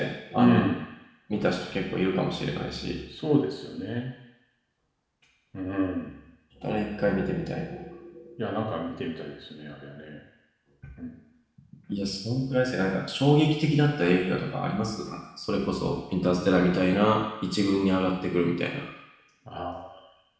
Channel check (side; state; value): both; identical; correlation 1.00